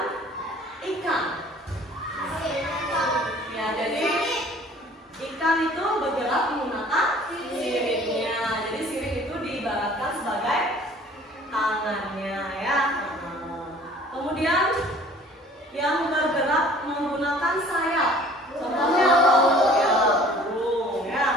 ikan. Ya, jadi ikan itu bergerak menggunakan siripnya. Jadi sirip itu diibaratkan sebagai tangannya ya. Kemudian yang bergerak menggunakan sayap. Contohnya apa? Ya, burung ya.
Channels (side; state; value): both; normal; correlation 0.51